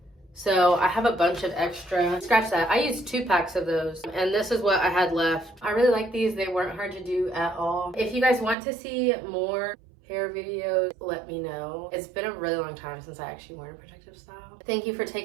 So I have a bunch of extra. Scratch that. I used 2 packs of those. And this is what I had left. I really like these. They weren't hard to do at all. If you guys want to see more hair videos, let me know. It's been a really long time since I actually worn a protective style. Thank you for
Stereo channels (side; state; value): left; drops out; at 8.6 s